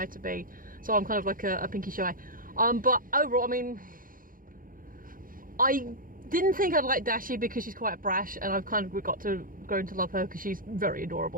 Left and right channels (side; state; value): left; late; 0.40 ms